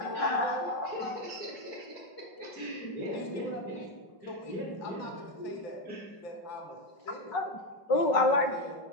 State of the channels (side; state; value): right; late; 5.4 ms